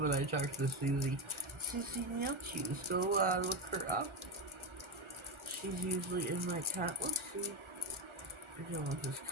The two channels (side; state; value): left; late; 1.4 ms